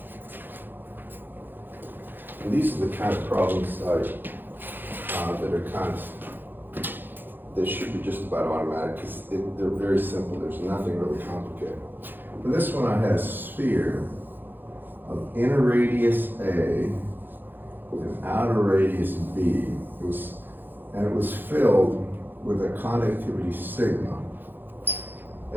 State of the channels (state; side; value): late; left; 0.093 ms